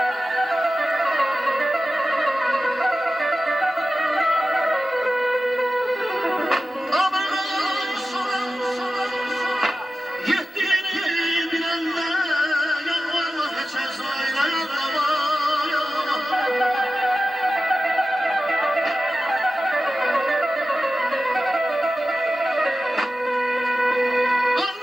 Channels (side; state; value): both; normal; correlation 0.94